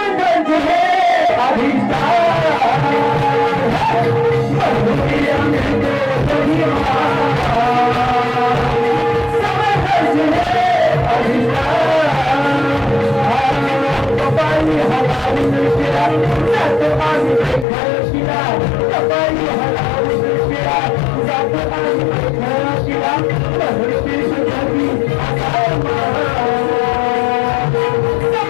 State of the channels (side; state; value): right; drops out; at 17.7 s